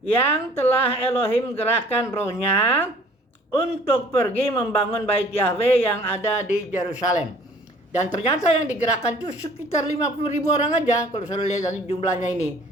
yang telah Elohim gerakkan rohnya untuk pergi membangun bait Yahweh yang ada di Yerusalem. Dan ternyata yang digerakkan itu sekitar 50.000 orang aja kalau saya lihat nanti jumlahnya ini.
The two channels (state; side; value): normal; both; correlation 0.53